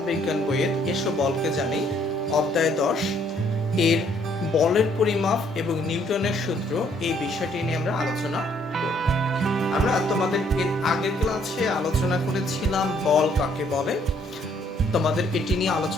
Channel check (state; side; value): normal; both; correlation 0.66